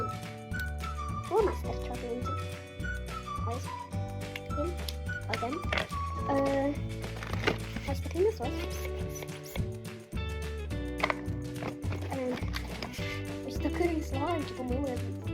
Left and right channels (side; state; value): both; identical; correlation 1.00